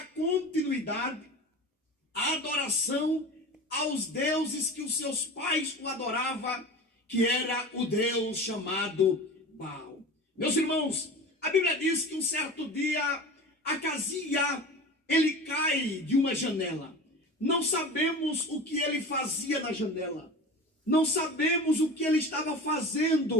continuidade à adoração aos deuses que os seus pais o adoravam, que era o Deus chamado Baal. Meus irmãos, a Bíblia diz que um certo dia, Acasia, ele cai de uma janela. Não sabemos o que ele fazia na janela. Não sabemos o que ele estava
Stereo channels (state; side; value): normal; both; correlation 0.33